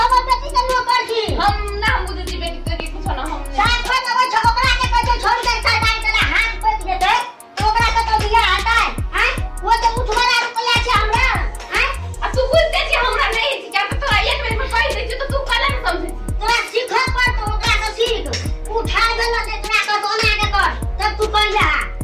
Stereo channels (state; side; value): identical; both; correlation 1.00